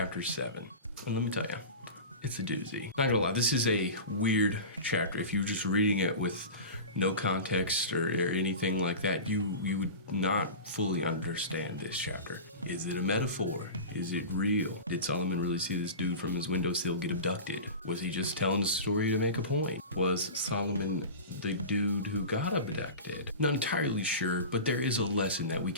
7. And let me tell you, it's a doozy. Not gonna lie, this is a weird chapter. If you're just reading it with no context or anything like that, you would not fully understand this chapter. Is it a metaphor? Is it real? Did Solomon really see this dude from his windowsill get abducted? Was he just telling the story to make a point? Was Solomon the dude who got abducted? Not entirely sure, but there is a lesson that we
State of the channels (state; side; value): inverted; both; correlation -0.31